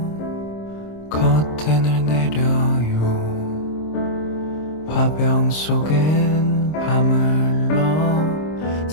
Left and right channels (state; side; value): late; right; 26 ms